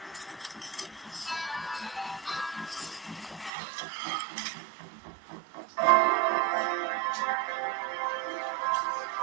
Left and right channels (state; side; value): drops out; left; at 3.5 s